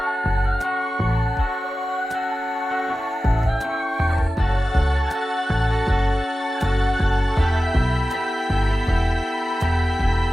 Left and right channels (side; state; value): both; normal; correlation 0.94